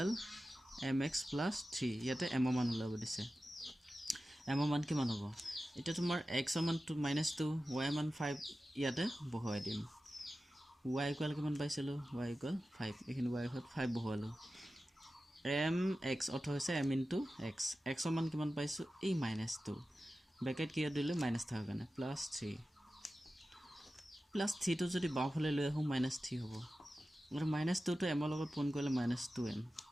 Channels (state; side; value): normal; both; correlation 0.94